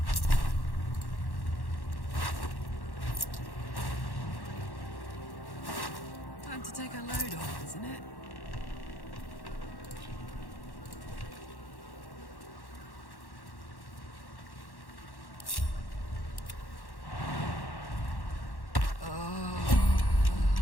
Time to take a load off, isn't it?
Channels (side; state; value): right; late; 1.1 ms